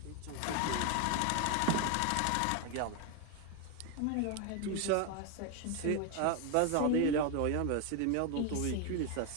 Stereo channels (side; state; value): both; different; correlation 0.01